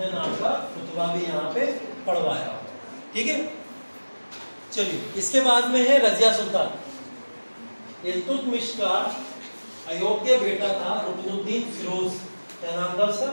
नाम का खुतबा भी यहाँ पे पढ़वाया होगा। ठीक है, चलिए इसके बाद में है रजिया सुल्तान। इल्तुतमिश का अयोग्य बेटा था रुकनुद्दीन फिरोज। क्या नाम था उसका?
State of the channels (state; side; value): inverted; both; correlation -1.00